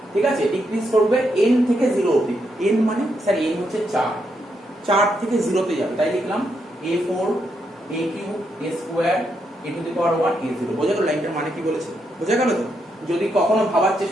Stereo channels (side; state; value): both; normal; correlation 0.80